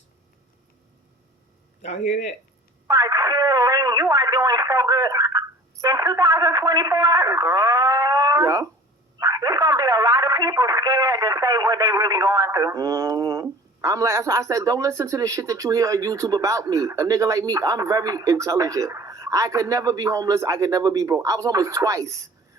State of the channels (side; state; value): both; normal; correlation 0.45